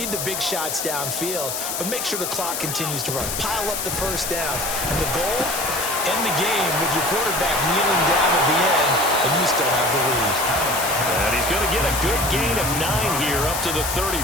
the big shots downfield, but make sure the clock continues to run. Pile up the first downs. And the goal, end the game with your quarterback kneeling down at the end, and you still have the lead. And he's going to get a good gain of 9 here up to the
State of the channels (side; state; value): left; noise; hiss, 3 dB below the sound